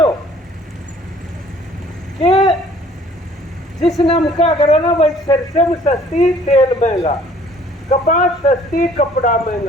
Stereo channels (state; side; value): normal; both; correlation 0.56